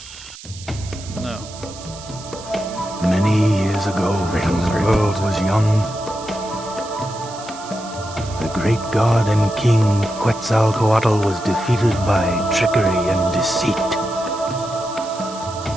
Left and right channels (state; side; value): noise; right; hiss, 16 dB below the sound